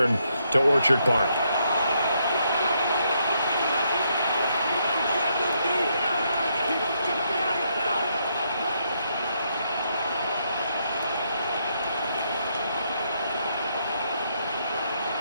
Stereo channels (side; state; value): both; inverted; correlation -0.76